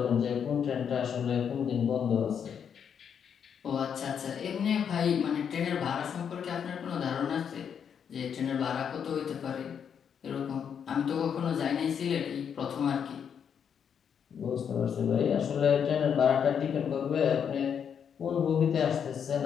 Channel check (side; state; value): right; quieter; 7.7 dB